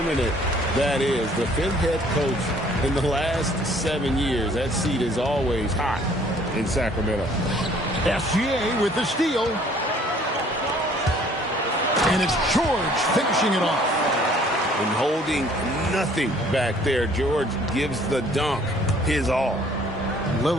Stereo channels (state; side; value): normal; both; correlation 0.57